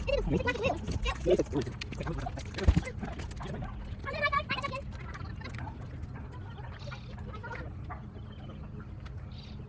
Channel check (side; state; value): both; identical; correlation 1.00